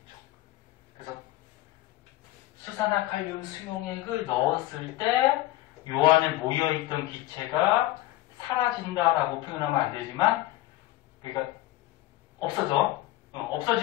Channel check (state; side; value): quieter; right; 16.5 dB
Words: 그래서 수산화칼륨 수용액을 넣었을 때 요 안에 모여있던 기체가 사라진다라고 표현하면 안 되지만, 그러니까 없어져.